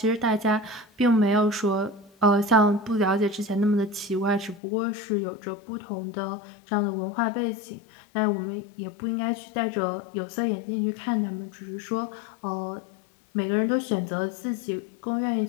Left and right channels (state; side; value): drops out; right; at 4.6 s